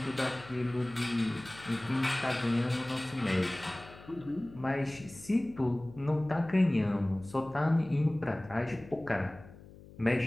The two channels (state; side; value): noise; left; hum, 20 dB below the sound